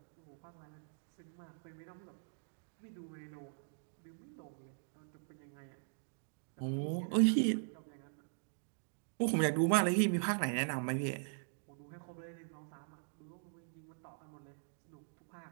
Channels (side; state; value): left; silent; digital silence